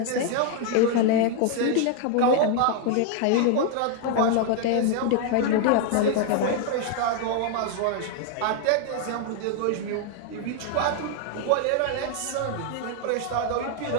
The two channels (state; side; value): different; both; correlation 0.00